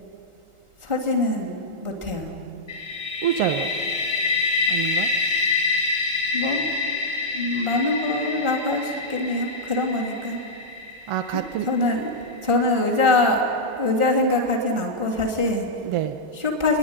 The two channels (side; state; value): left; late; 1.4 ms